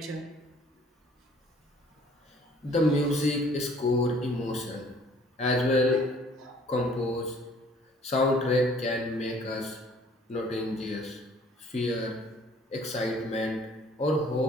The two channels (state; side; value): normal; both; correlation 0.56